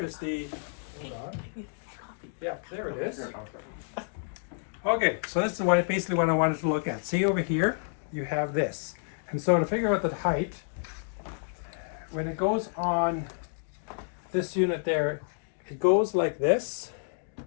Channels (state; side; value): silent; right; digital silence